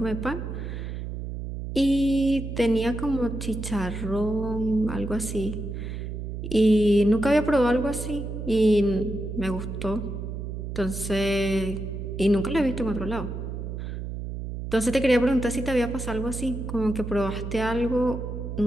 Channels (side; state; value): right; noise; hum, 6 dB below the sound